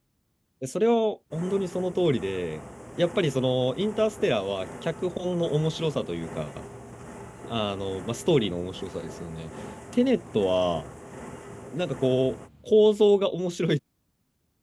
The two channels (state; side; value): identical; both; correlation 1.00